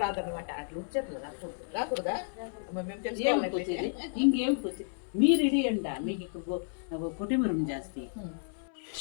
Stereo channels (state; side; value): silent; right; 57 dB below the other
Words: రాదనమాట అట్లా వచ్చేట్లు రాకూడదు రాకూడదా అమ్మ, మేము ఏం తెలుసుకోవాలి పోతుంది ఇంకేం పోతుంది మీరు ఇడి అంట మీకు ఇక్కడ కొట్టిమరం జాస్తి